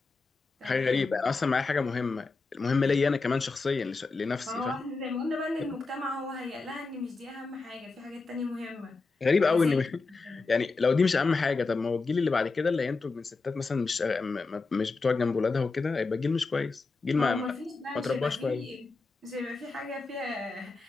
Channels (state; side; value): quieter; right; 4.0 dB